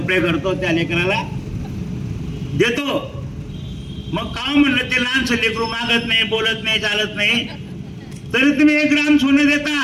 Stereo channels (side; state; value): both; identical; correlation 1.00